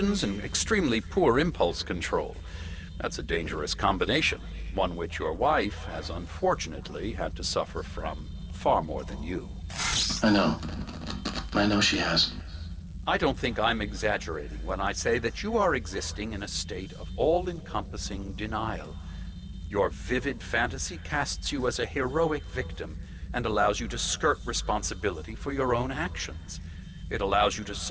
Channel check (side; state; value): both; identical; correlation 1.00